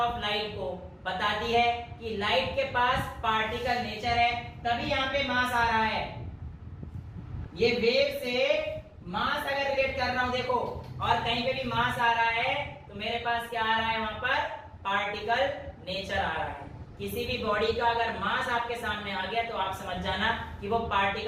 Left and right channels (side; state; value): both; identical; correlation 1.00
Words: लाइट को बताती है कि लाइट के पास पार्टिकल नेचर है, तभी यहां पे मास आ रहा है। ये वेव से मास अगर रिलेट कर रहा हूं देखो, और कहीं पे भी मास आ रहा है तो मेरे पास क्या आ रहा है, वहां पर पार्टिकल नेचर आ रहा है। किसी भी बॉडी का अगर मास आपके सामने आ गया तो आप समझ जाना कि वो